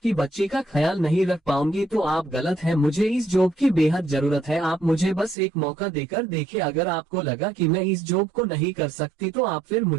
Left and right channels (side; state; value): left; drops out; at 5.4 s